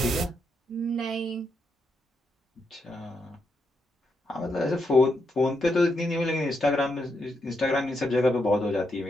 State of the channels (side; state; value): both; normal; correlation 0.81